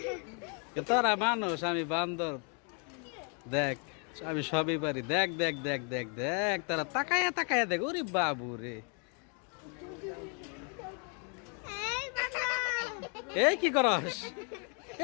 তোরা মানুষ, আমি বান্দর, দেখ আমি সবই পারি, দেখ দেখ দেখ দেখ দেখ, তারা তাকায়া তাকায়া দেখ। ওরে বাবু রে, এই কি করস?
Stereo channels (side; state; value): right; quieter; 37.9 dB